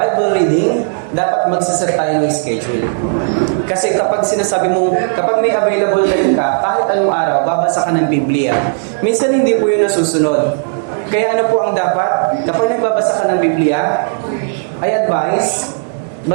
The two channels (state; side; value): silent; left; digital silence